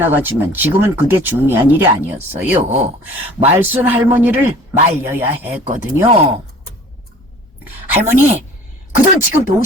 지금은 그게 중요한 일이 아니었어요. 말순 할머니를 말려야 했거든요. 할머니, 그 돈 지금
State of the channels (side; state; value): both; normal; correlation 0.47